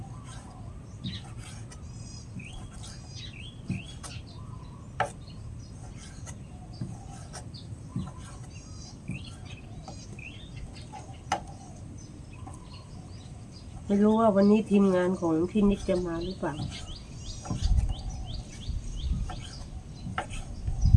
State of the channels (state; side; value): identical; both; correlation 1.00